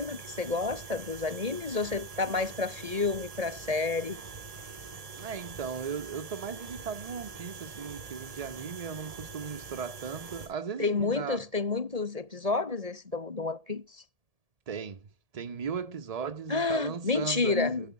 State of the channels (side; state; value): left; late; 1.7 ms